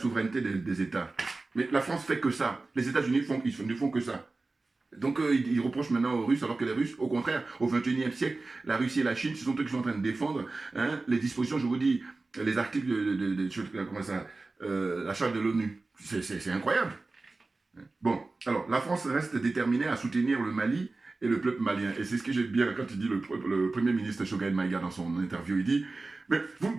des États ». Mais la France fait que ça. Les États-Unis ne font que ça. Donc, il reproche maintenant aux Russes, alors que les Russes, au contraire, au XXIe siècle, la Russie et la Chine, ce sont eux qui sont en train de défendre hein, les dispositions, je vous dis, les articles comment ça, la charte de l'ONU. C'est incroyable. Bon, alors, la France reste déterminée à soutenir le Mali et le peuple malien. Et c'est ce que j'aime bien quand il dit le Premier ministre Choguel Maïga dans son interview, il dit « Mais vous ne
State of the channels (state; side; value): quieter; left; 3.5 dB